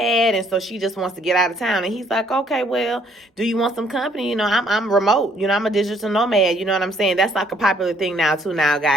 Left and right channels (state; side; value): normal; both; correlation 0.65